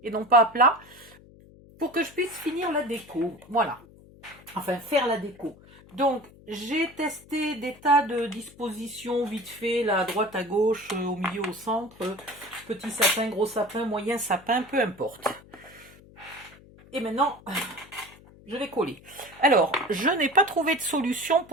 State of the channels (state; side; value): noise; left; hum, 23 dB below the sound